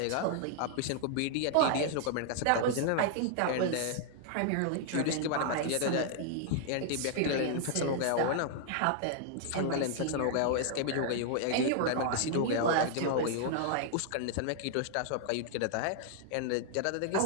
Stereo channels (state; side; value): different; both; correlation -0.01